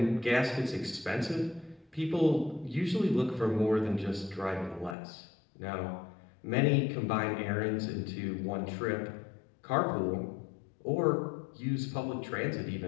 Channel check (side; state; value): right; drops out; at 5.0 s